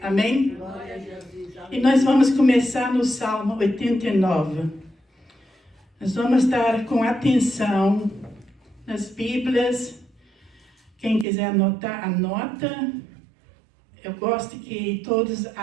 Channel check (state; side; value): drops out; left; at 11.2 s